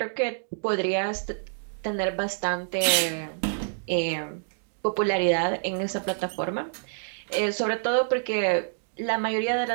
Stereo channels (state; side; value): silent; left; digital silence